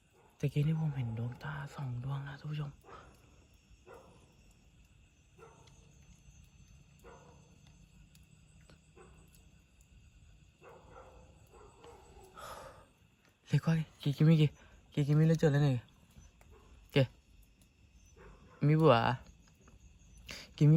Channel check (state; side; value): identical; both; correlation 1.00